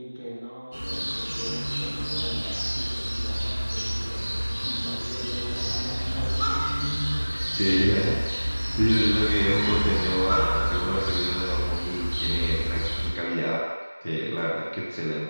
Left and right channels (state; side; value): inverted; both; correlation -1.00